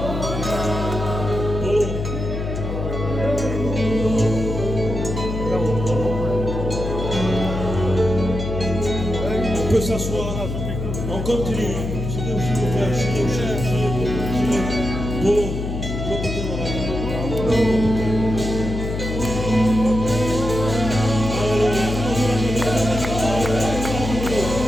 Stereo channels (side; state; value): left; noise; hum, 4 dB below the sound